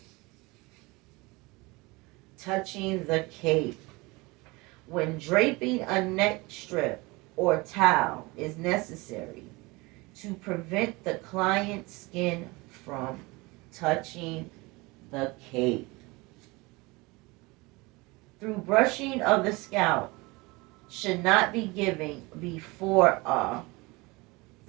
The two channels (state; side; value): quieter; left; 24.1 dB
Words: touching the cape. When draping a neck strip or towel is necessary to prevent the client's skin from touching the cape. Through brushing of the scalp should not be given before a